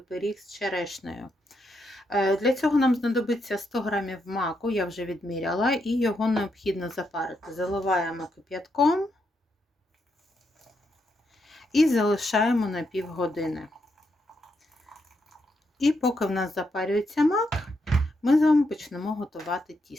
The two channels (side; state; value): both; normal; correlation 0.80